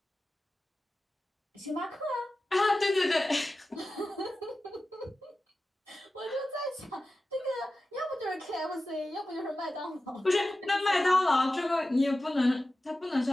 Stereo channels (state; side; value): normal; both; correlation 0.94